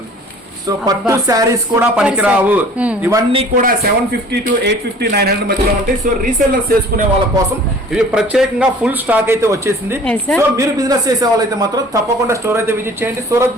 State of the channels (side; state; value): both; normal; correlation 0.48